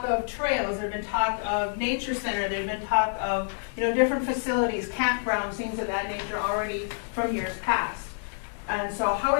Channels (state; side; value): silent; right; digital silence